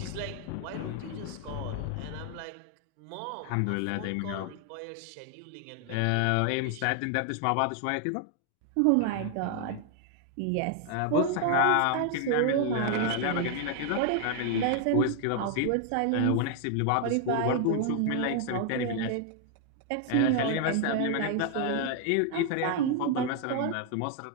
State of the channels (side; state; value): both; different; correlation 0.00